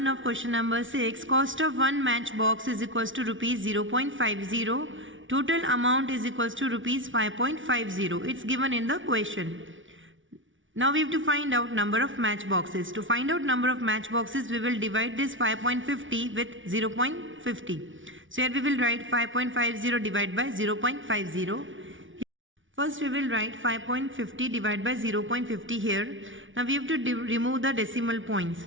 of question number 6. Cost of one matchbox is equals to rupees 0.50. Total amount is equals to rupees 5.50. It's given in the question. Now we have to find out number of matchboxes. To find out number of matchboxes, we will divide this 5.50 with 0.50. So here we will write 5.50 divided by 0.50. First we will write 5.50 divided by 0.50 here. Now we have to remove the decimal points.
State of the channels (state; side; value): late; left; 0.56 ms